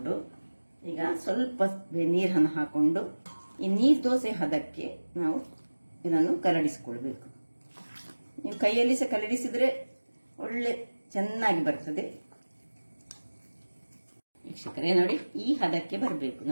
ಈಗ ಸ್ವಲ್ಪ ನೀರನ್ನು ಹಾಕೊಂಡು ಈ ನೀರು ದೋಸೆ ಹದಕ್ಕೆ ನಾವು ಇದನ್ನು ಕಲಡಿಸಿಕೊಳ್ಬೇಕು. ನೀವು ಕೈಯಲ್ಲಿ ಸಹ ಕಲಡಿಸಿದ್ರೆ ಒಳ್ಳೆ ಚೆನ್ನಾಗಿ ಬರ್ತದೆ. ವೀಕ್ಷಕರೇ ನೋಡಿ, ಈ ಹದಕ್ಕೆ ಬರಬೇಕು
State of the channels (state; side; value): inverted; both; correlation -1.00